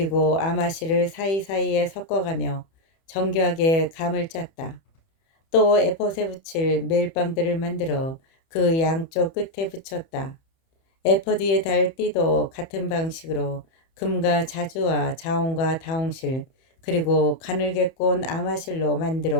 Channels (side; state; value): right; late; 30 ms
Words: 아마실을 사이사이에 섞어가며 정교하게 감을 짰다. 또 에폿에 붙일 멜빵들을 만들어 그 양쪽 끝에 붙였다. 에퍼 뒤에 달 띠도 같은 방식으로 금과 자주와 자홍과 다홍실 그리고 가늘게 꼰 아마실로